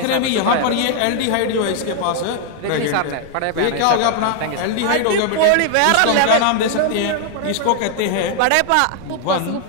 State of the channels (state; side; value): different; both; correlation 0.00